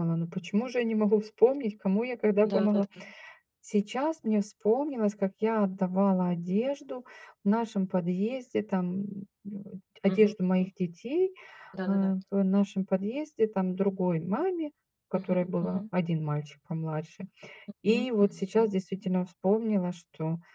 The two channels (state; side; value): identical; both; correlation 1.00